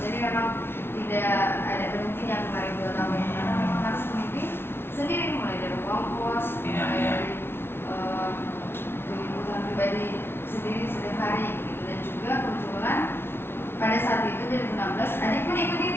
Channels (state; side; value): late; right; 0.11 ms